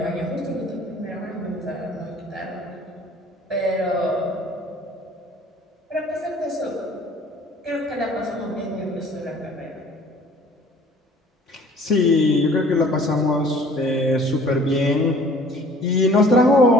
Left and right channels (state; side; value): normal; both; correlation 0.51